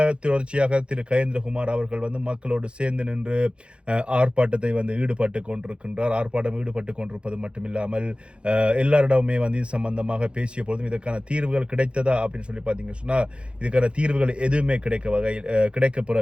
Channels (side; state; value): left; late; 0.057 ms